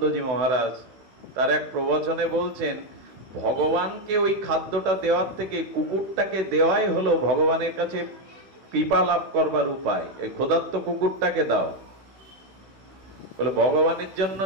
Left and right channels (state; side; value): late; left; 16 ms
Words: মহারাজ তার এক প্রবচনে বলছেন ভগবানকে ওই খাদ্যটা দেওয়ার থেকে কুকুরটাকে দেওয়াই হলো ভগবানের কাছে কৃপা লাভ করবার উপায়। এই ক্ষুধার্ত কুকুরটাকে দাও। বলে ভগবানের জন্য